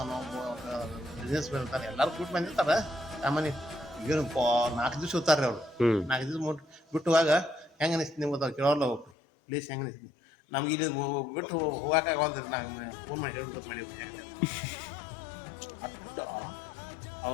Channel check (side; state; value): right; drops out; at 9.1 s